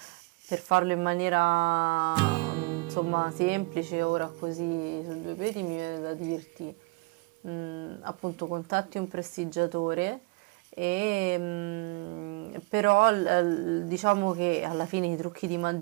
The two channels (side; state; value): left; quieter; 27.3 dB